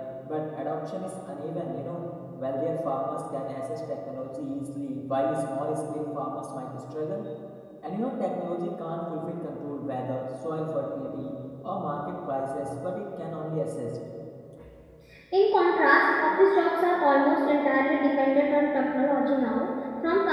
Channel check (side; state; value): both; identical; correlation 1.00